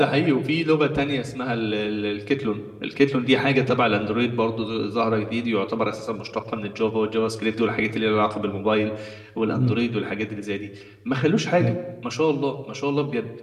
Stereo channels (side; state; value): both; identical; correlation 1.00